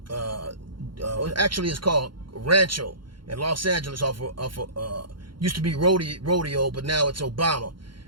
Actually, it's called Rancho in Los Angeles used to be rodeo, but now it's Obama.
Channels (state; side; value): late; left; 0.72 ms